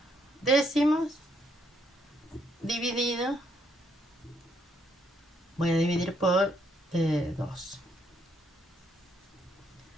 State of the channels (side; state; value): both; normal; correlation 0.72